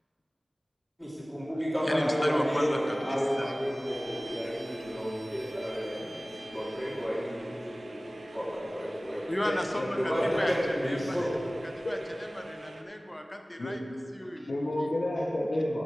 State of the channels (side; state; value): both; normal; correlation 0.98